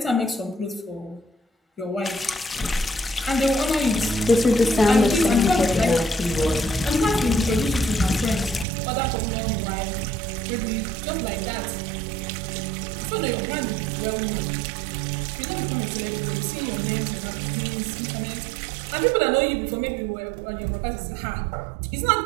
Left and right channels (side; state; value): left; drops out; at 8.7 s